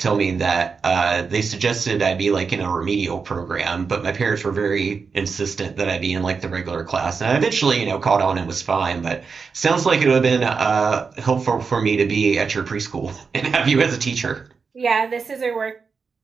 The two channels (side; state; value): left; quieter; 5.2 dB